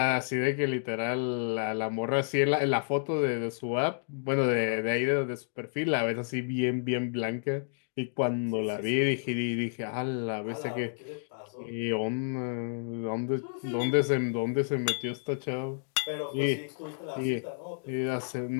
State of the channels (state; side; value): silent; right; digital silence